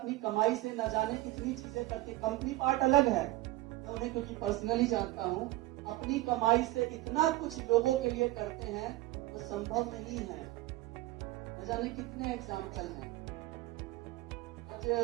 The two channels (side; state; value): left; quieter; 17.5 dB